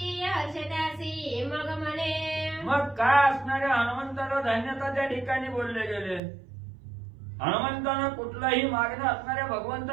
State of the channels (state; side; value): drops out; left; at 6.2 s